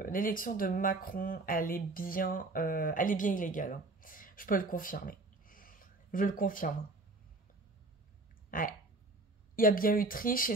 Macron, elle est bien illégale, hein. Je peux le confirmer. Je le confirme. Ouais. Il y a bien eu triche et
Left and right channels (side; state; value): left; quieter; 3.0 dB